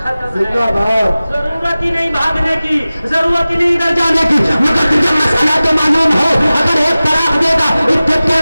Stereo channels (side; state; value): both; inverted; correlation -0.97